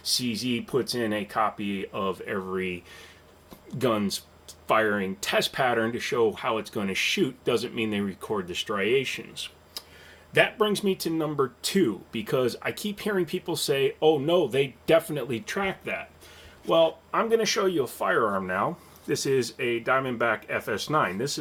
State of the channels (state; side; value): identical; both; correlation 1.00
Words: CZ puts in a copy of every gun's firing test pattern to show how it's going to shoot. Doesn't mean they record the striations. That brings me to number 2, because I keep hearing people say, oh no, they definitely track that. Well, I'm going to show you a firearm now. This is a Diamondback FS9. This